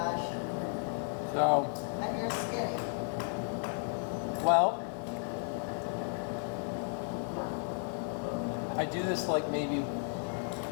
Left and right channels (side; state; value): right; silent; 55 dB below the other